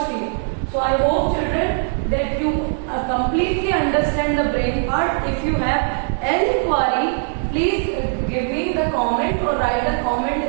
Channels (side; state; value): left; silent; 61 dB below the other